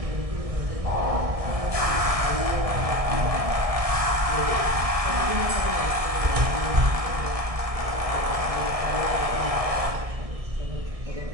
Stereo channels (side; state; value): left; late; 1.6 ms